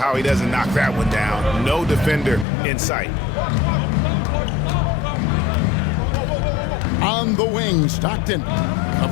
he doesn't knock that one down. No defender in sight. On the wing, Stockton.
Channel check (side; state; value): right; drops out; at 2.5 s